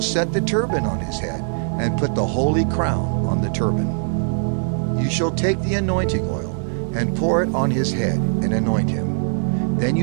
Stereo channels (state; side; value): silent; left; digital silence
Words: set the turban on his head, and put the holy crown on the turban. You shall take the anointing oil, and pour it on his head, and anoint him. Then